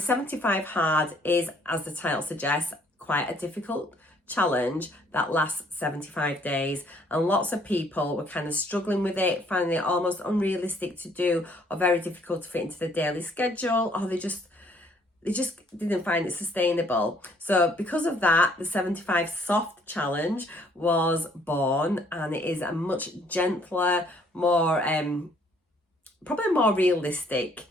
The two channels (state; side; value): normal; both; correlation 0.63